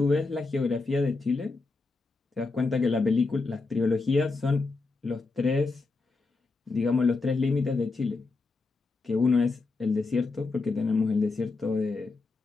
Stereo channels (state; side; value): quieter; right; 3.8 dB